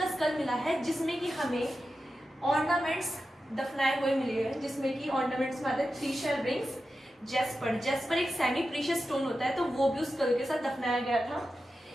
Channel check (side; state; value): both; normal; correlation 0.91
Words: स्कल मिला है जिसमें कि हमें ऑर्नामेंट्स दफनाए हुए मिले हैं, जिसमें कि ऑर्नामेंट्स में आते हैं 3 शेल रिंग्स, जेस्पर एक सेमी प्रीशियस स्टोन होता है, तो वो भी उस स्कल के साथ दफनाया गया था।